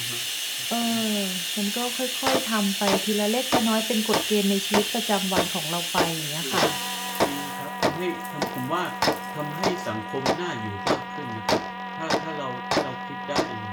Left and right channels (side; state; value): both; identical; correlation 1.00